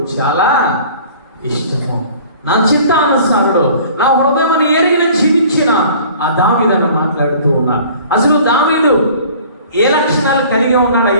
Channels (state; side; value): inverted; both; correlation -0.48